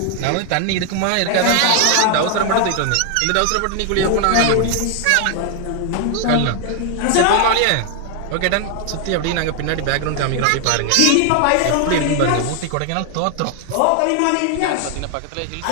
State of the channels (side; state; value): both; different; correlation 0.00